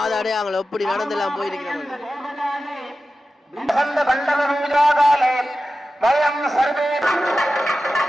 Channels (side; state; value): both; normal; correlation 0.93